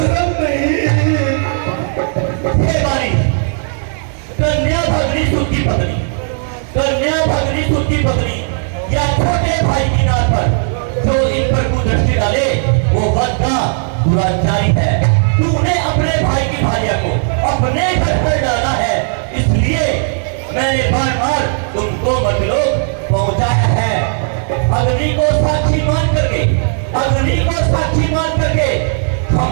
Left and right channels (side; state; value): left; silent; 61 dB below the other